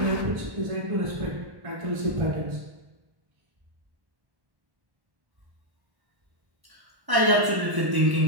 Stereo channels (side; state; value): left; late; 1.0 ms